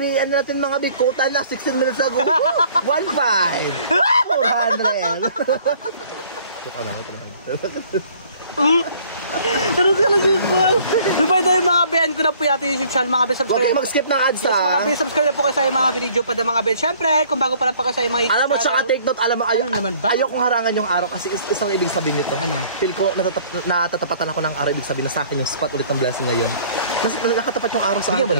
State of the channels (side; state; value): both; inverted; correlation -0.55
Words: ano natin mga bi, quota na 16 minutes ago. 1.5. 400. Joke lang, ito naman. Ano sila yung small? So by the way mga bibed ko na po yung ating YouTube channel mga bibed Huwag subscribe. kayo mag-skip ng ads Yes, mga bibed subscribe na po kayo sa mga video pa mga bibed. Siyempre kung bago pa lang pa kayo sa mga YouTube alam mo, tsaka channel. take note, alam mo, Ano naman ba? ayokong harangan yung araw kasi isang ibig sabihin nito. Ano? Feel ko, natatapatan ako ng araw, ibig sabihin na sa akin yung spot ulit ng blessing ngayon. Nakatapat yung araw sa akin. Bigyan mo